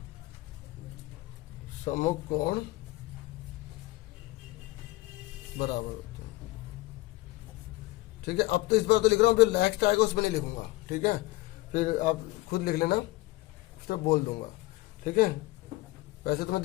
सम्मुख कोण बराबर होते हैं, ठीक है। अब तो इस बार तो लिख रहा हूँ, जो नेक्स्ट आएगा उसमें नहीं लिखूंगा, ठीक है। फिर आप खुद लिख लेना, उस तरफ बोल दूंगा, ठीक है। वैसे तो मैं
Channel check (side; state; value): right; quieter; 20.1 dB